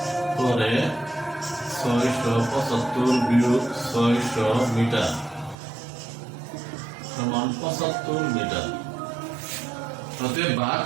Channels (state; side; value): drops out; left; at 5.6 s